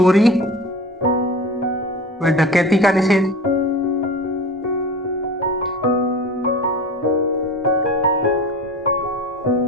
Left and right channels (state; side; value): normal; both; correlation 0.34